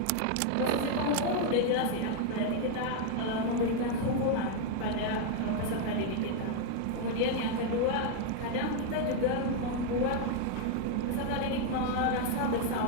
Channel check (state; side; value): different; both; correlation 0.00